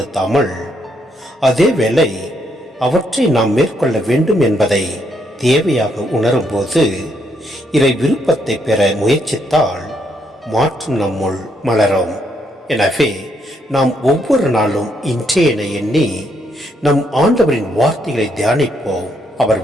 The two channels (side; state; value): both; normal; correlation 0.75